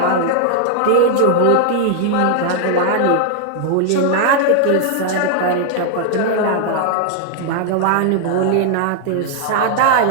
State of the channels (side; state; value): both; different; correlation 0.00